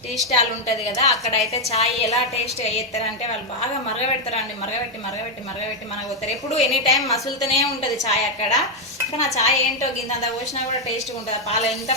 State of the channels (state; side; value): normal; both; correlation 0.01